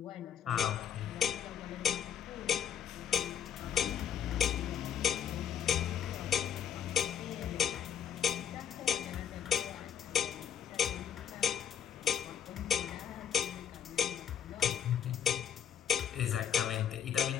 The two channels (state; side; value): quieter; right; 8.8 dB